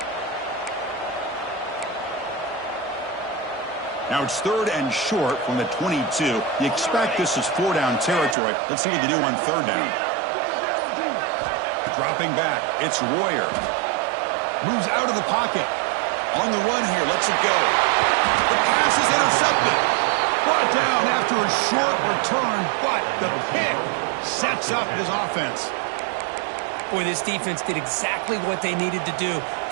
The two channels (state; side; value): drops out; left; at 8.3 s